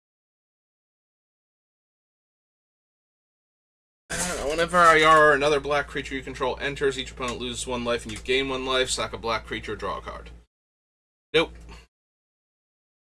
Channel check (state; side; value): identical; both; correlation 1.00